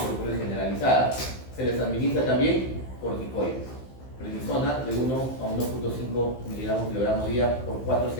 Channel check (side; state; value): right; late; 15 ms